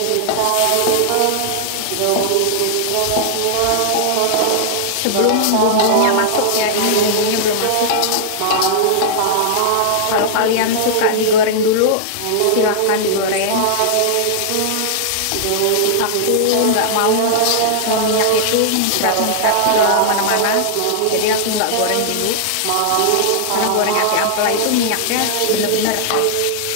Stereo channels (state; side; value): different; both; correlation -0.01